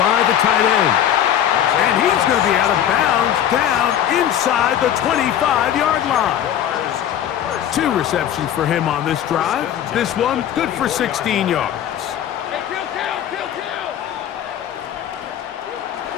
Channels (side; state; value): right; quieter; 10.4 dB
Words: the tight end. And he's going to be out of bounds down inside the 25-yard line. 2 receptions for him on this drive. This one good for 16 yards.